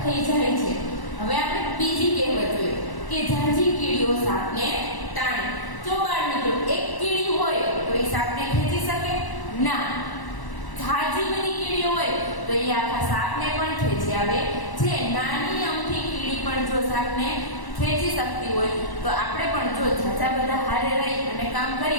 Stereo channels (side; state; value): right; late; 1.1 ms